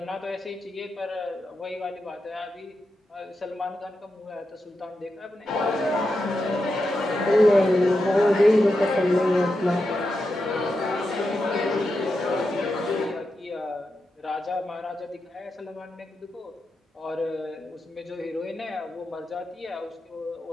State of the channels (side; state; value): both; normal; correlation 0.88